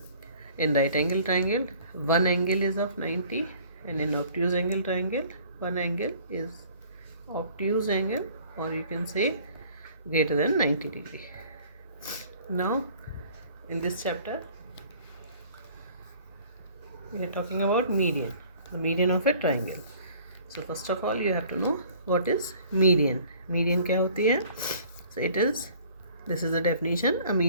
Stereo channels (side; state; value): both; inverted; correlation -0.53